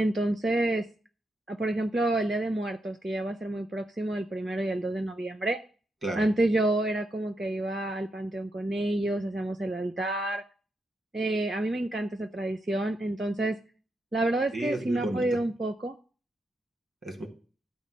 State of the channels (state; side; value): normal; both; correlation 0.82